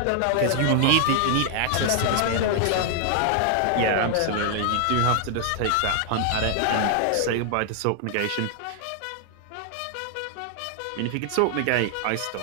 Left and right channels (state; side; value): different; both; correlation 0.00